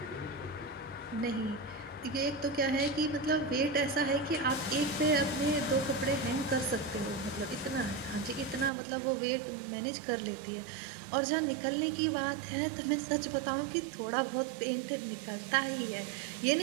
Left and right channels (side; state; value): left; drops out; at 8.7 s